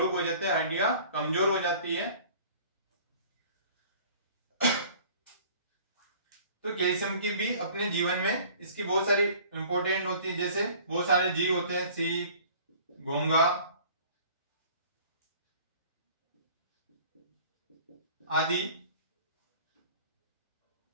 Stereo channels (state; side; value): inverted; both; correlation -0.49